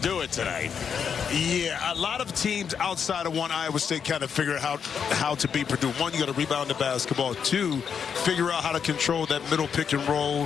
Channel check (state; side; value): quieter; right; 7.0 dB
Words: it tonight? Yeah, a lot of teams outside of one Iowa State kind of figure out how to beat Purdue. One, you got to rebound the basketball. 2, figure out how to control that middle pick and